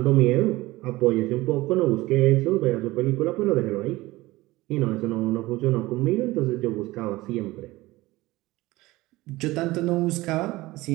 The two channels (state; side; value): quieter; left; 19.3 dB